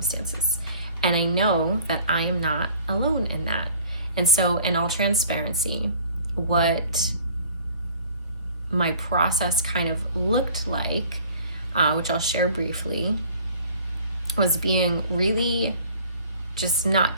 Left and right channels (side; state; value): both; inverted; correlation -0.50